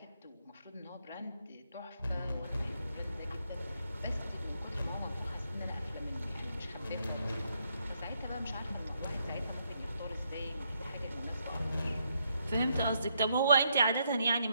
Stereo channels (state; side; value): inverted; both; correlation -0.77